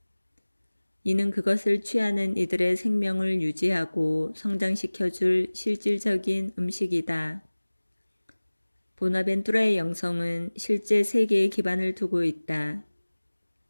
이는 그것을 취하는 이들의 생명을 유지하고 성장시켜줄 실질적인 음식이다. 보나벤투라의 영성은 실제 세계에 기반을 두고 있다.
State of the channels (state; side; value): inverted; both; correlation -1.00